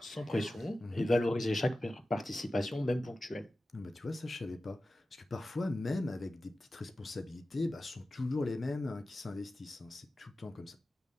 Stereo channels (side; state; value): both; normal; correlation 0.95